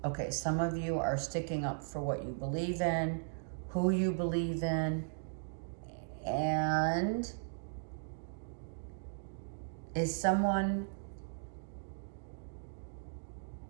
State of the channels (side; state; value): left; silent; digital silence